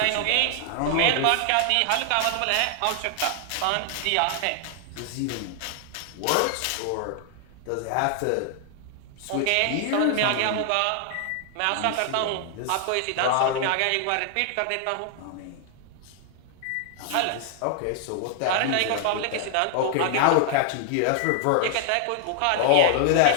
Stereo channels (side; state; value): both; different; correlation 0.00